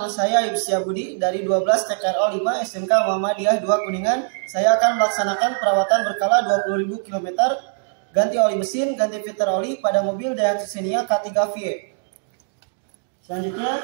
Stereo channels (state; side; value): silent; left; digital silence